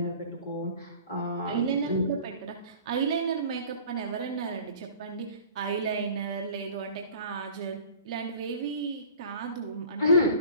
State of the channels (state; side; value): inverted; both; correlation -0.44